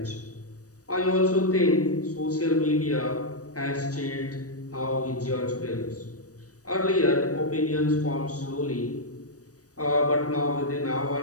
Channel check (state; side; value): late; right; 0.66 ms